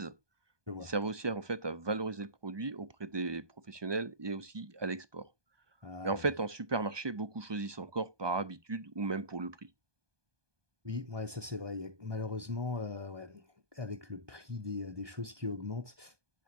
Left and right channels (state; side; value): late; left; 1.2 ms